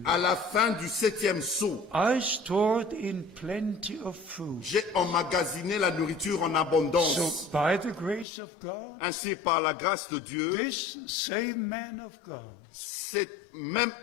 À la fin du 7e saut, I stored in plenty of food. j'ai emmagasiné la nourriture en abondance. So by the grace of God, Ainsi, par la grâce de Dieu, this same man of God cet même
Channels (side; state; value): right; drops out; at 8.2 s